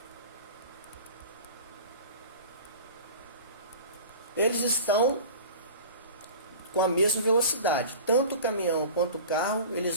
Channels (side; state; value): both; inverted; correlation -0.38